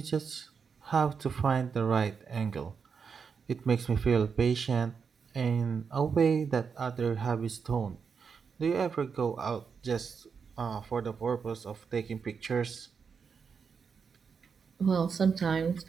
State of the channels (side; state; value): left; quieter; 6.0 dB